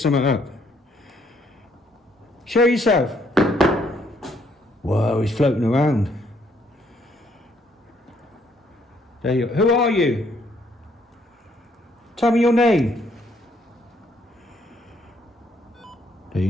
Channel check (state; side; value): normal; both; correlation 0.69